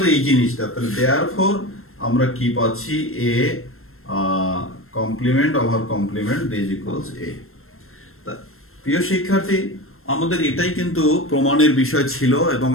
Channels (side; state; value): right; late; 0.62 ms